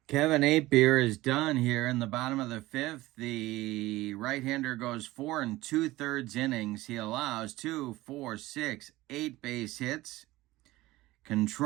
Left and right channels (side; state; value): left; quieter; 18.2 dB